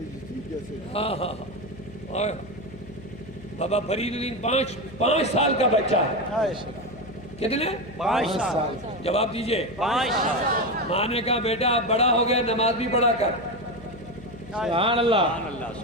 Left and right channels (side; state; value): left; noise; hum, 18 dB below the sound